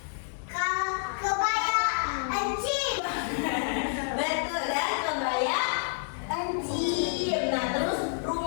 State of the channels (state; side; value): silent; right; 59 dB below the other